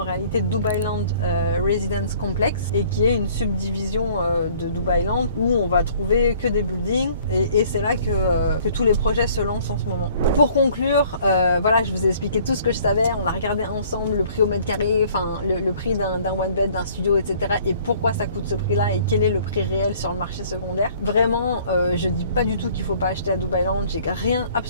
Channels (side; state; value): both; inverted; correlation -0.56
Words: réalité Dubailand Residence Complex, et qui est une subdivision de Dubailand où on va trouver que des buildings, et c'est là que tous les projets se lancent en ce moment. Pour conclure, voilà, je vous ai expliqué tout ce que je savais, on a regardé ensemble le prix au mètre carré, enfin le prix d'un one bed, d'un studio, etc. et pourquoi ça coûte ce prix-là et quel est le prix réel sur le marché secondaire. Vraiment, je dis pas du tout qu'il faut pas acheter à Dubailand, j'ai